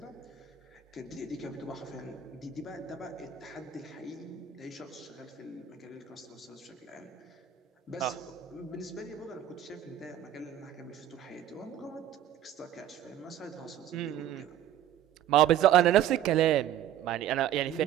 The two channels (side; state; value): left; quieter; 10.6 dB